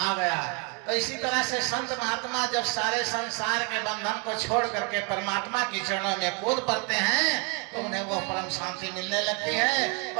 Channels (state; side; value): quieter; left; 30.9 dB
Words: गया। तो इसी तरह से संत महात्मा जब सारे संसार के बंधन को छोड़ करके परमात्मा की चरणों में कूद पड़ते हैं तो उन्हें वो परम शांति मिलने लगती है।